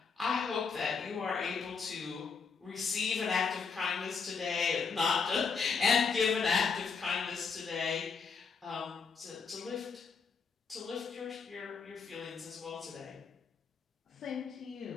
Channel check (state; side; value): quieter; right; 5.4 dB